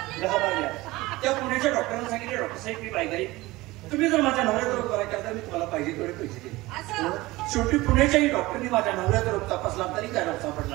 त्या पुण्याच्या डॉक्टरांना सांगितले डॉक्टर साहेब मी बायगाई तुम्ही जर माझ्या नवऱ्याचा रोग करायचा तर मी तुम्हाला पाहिजे तेवढे पैसे देईन. शेवटी पुण्याच्याही डॉक्टरनी माझ्या नवऱ्याचा रोग तपासला तरी त्या रोग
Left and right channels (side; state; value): left; quieter; 19.9 dB